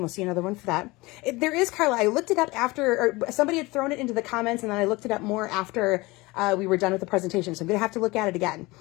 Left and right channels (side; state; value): right; quieter; 22.5 dB